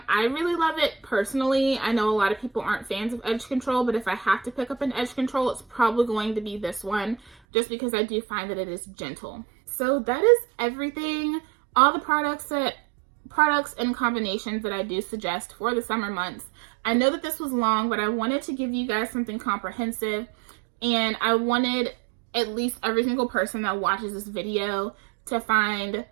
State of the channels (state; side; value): drops out; left; at 7.3 s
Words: really love it personally. I know a lot of people aren't fans of edge control, but if I have to pick up an edge control, it's probably going to be this one, just because I do find that it is gentle. So that is everything. All the products and combinations that I do suggest for the summer months. I know that this was long, but I wanted to give you guys something comprehensive, and I wanted at least every single person that watches this video to find